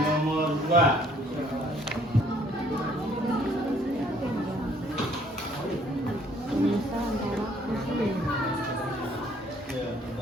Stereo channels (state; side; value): normal; both; correlation 0.61